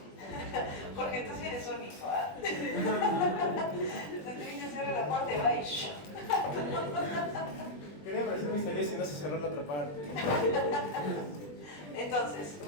Jorge, tú sí eres único, ¿ah? Se te dice cerrar la puerta y va y shh. Quería parecer misterioso y no se cerró la otra parte. Entonces,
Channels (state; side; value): late; right; 20 ms